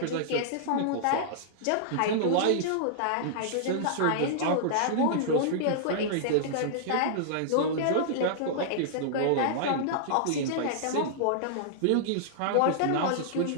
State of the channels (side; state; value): both; different; correlation -0.02